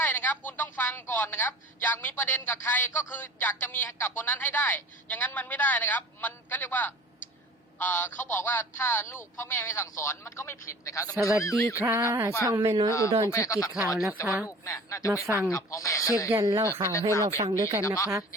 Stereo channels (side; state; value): both; normal; correlation 0.43